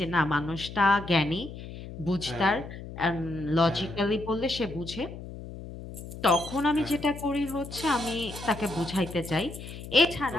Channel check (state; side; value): noise; left; hum, 12 dB below the sound